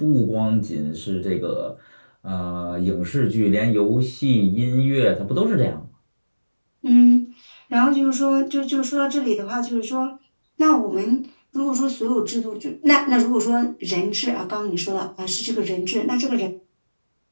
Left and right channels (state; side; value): inverted; both; correlation -1.00